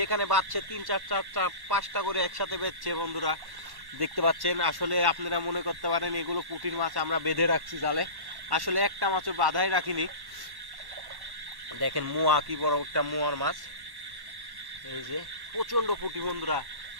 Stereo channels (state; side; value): late; left; 1.1 ms